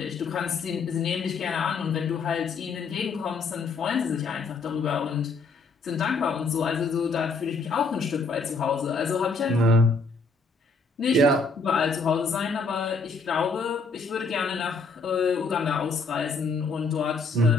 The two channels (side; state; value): right; quieter; 3.9 dB